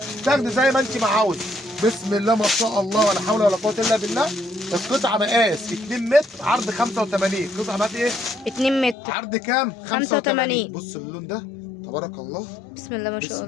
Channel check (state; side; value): drops out; right; at 9.0 s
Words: تاخدي زي ما انت ما عاوزه. بسم الله ما شاء الله ولا حول ولا قوه الا بالله. القطعه مقاس 2 متر عرض 85. قطعه مقاس ايه؟ 2 متر عرض كام؟ 85. بص اللون ده تبارك الله. بسم الله ما شاء بسم